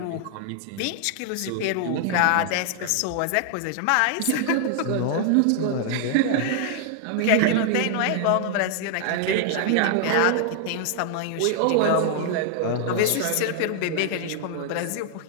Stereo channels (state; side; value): different; both; correlation -0.01